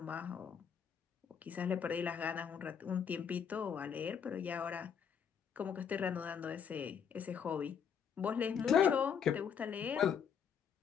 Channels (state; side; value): quieter; right; 7.4 dB